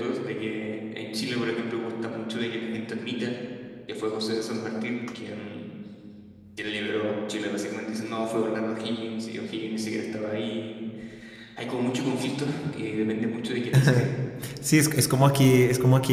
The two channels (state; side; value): identical; both; correlation 1.00